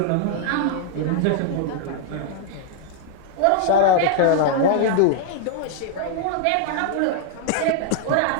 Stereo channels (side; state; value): both; different; correlation -0.01